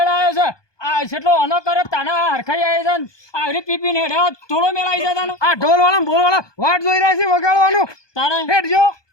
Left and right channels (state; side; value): late; right; 1.2 ms